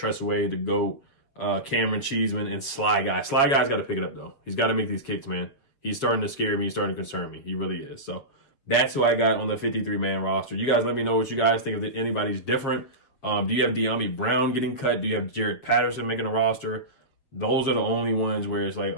Way, the GOAT, Cameron Cheeseman, and Sly Guy. Sly Guy's got to pick it up though. He's got to make these kicks, man. He's starting to scare me. He's starting to concern me. He really is. So that's who I got on the 53-man roster. You guys let me know what you guys think. If anybody's different. Do you have De'Ami Brown getting cut? Do you have Jared Patterson making a roster? Those are the only ones where it's like,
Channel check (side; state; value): right; late; 7.4 ms